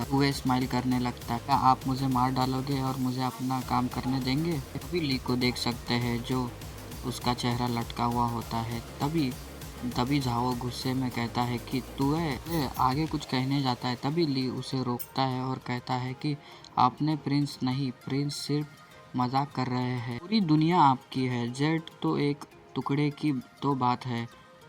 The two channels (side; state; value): both; identical; correlation 1.00